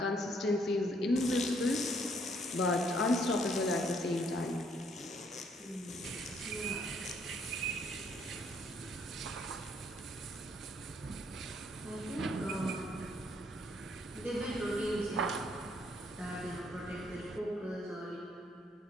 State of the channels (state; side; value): normal; both; correlation 0.68